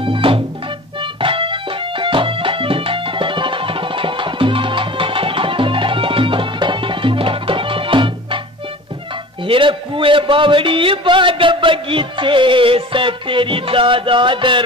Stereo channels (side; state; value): both; normal; correlation 0.39